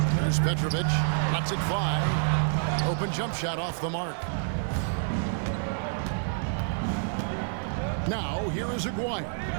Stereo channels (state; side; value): silent; left; 59 dB below the other